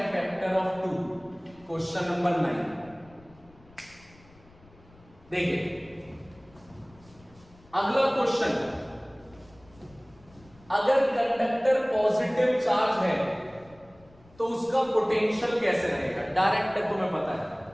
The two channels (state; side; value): noise; left; rumble, 26 dB below the sound